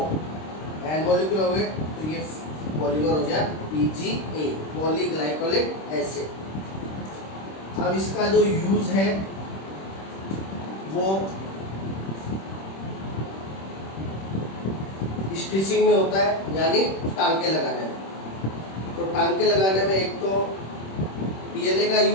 N मॉलिक्यूल हो गए तो ये पॉलीमर हो गया PGA, पॉलीग्लाइकोलिक एसिड। अब इसका जो यूज है वो स्टिचिंग में होता है, यानी टांके लगाने में। तो टांके लगाने में एक तो PLA का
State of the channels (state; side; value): late; right; 26 ms